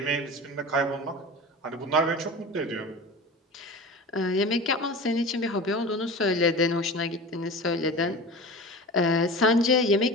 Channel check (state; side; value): normal; both; correlation 0.32